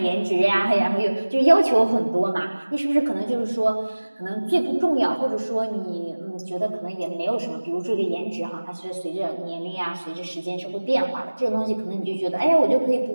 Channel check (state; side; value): inverted; both; correlation -1.00